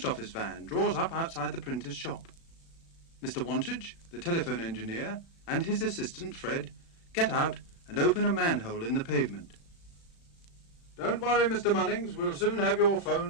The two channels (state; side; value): late; right; 36 ms